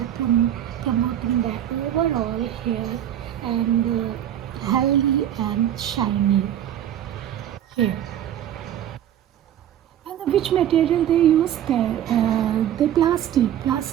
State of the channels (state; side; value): quieter; left; 10.9 dB